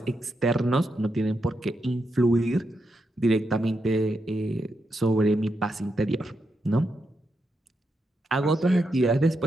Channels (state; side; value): normal; both; correlation 0.84